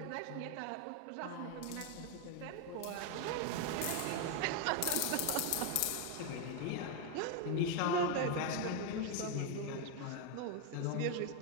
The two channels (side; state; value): both; different; correlation 0.01